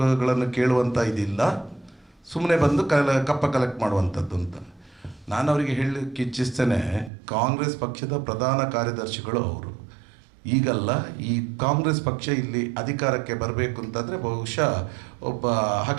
ಕೇಳುವಂಥ ಇದಿಲ್ಲ, ಸುಮ್ಮನೆ ಬಂದು ಕಪ್ಪ ಕಲೆಕ್ಟ್ ಮಾಡುವಂಥದ್ದು ಅಂತ. ನಾನು ಅವರಿಗೆ ಹೇಳಲಿಕ್ಕೆ ಇಚ್ಛಿಸ್ತೇನೆ, ಕಾಂಗ್ರೆಸ್ ಪಕ್ಷದ ಪ್ರಧಾನ ಕಾರ್ಯದರ್ಶಿಗಳು ಅವರು. ಈಗಲ್ಲ, ಈ ಕಾಂಗ್ರೆಸ್ ಪಕ್ಷ ಇಲ್ಲಿ ಅಧಿಕಾರಕ್ಕೆ ಬರಬೇಕು ಅಂತಂದರೆ ಬಹುಶಃ ಒಬ್ಬ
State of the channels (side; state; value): left; drops out; at 7.1 s